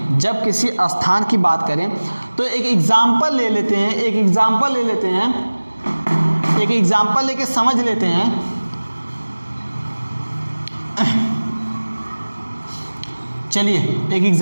बात करें तो एक एग्जाम्पल ले लेते लेके समझ लेते हैं। चलिए एक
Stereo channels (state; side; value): inverted; both; correlation -1.00